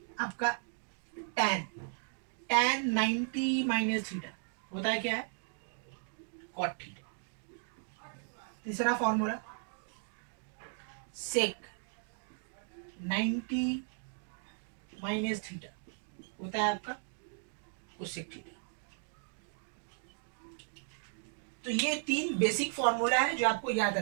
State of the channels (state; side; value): silent; left; 54 dB below the other